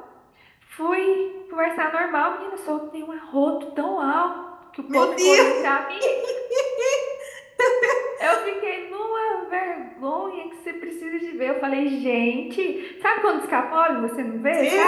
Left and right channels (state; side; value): identical; both; correlation 1.00